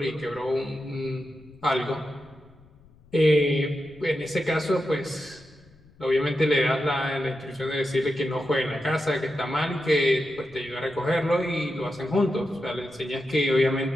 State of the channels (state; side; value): noise; left; rumble, 27 dB below the sound